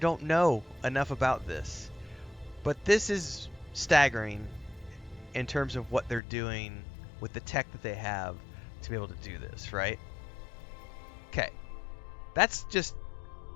know enough about this. But this is staggering in terms of what they're doing with the tech that they have to be able to do this, right? Okay. That's just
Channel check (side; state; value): right; drops out; at 6.2 s